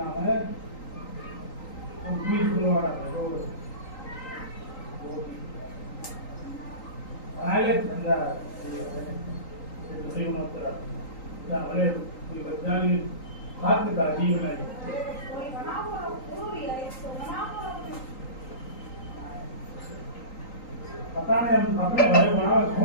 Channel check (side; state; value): right; late; 3.9 ms